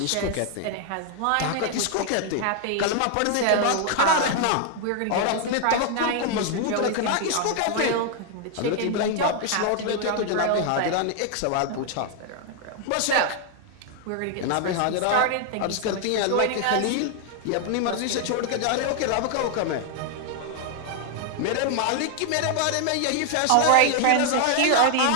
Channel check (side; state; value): both; different; correlation 0.00